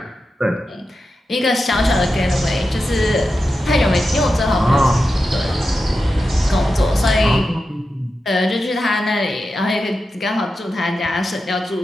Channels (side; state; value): both; normal; correlation 0.90